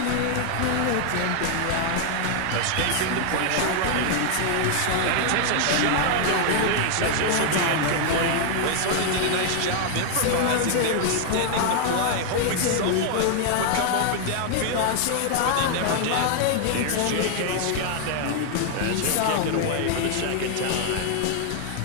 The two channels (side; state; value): both; different; correlation 0.00